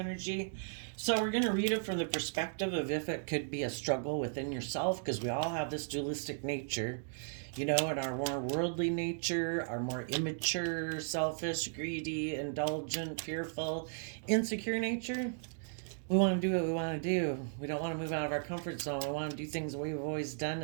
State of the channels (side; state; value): left; silent; digital silence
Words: So we're going to read it from the perspective of if it could be a struggle within yourself, because we all have this dualistic nature. You know, in our more worldly nature, our more immature, selfish, greedy, indulgent, fearful, insecure nature. We want to do what we want to do. We don't want to move out of our comfort zone. We want to do things the way we've always done